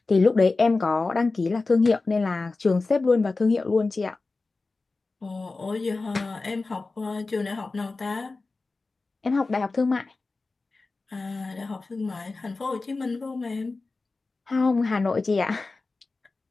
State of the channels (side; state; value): right; quieter; 3.7 dB